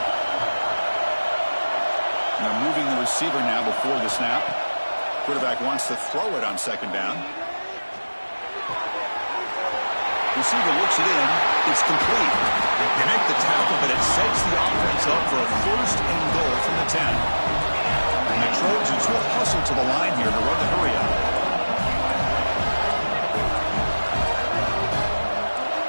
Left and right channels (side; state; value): both; inverted; correlation -1.00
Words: Now moving the receiver now before the snap. Quarterback wants to throw it on second down. Receiver looks it in. It's complete. They make the tackle, but it sets the offense up for a first and goal from the 10. And the Trojans will hustle to the line here to run the hurry up.